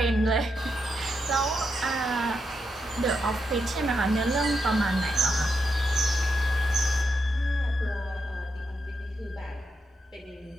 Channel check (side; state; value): both; normal; correlation 0.83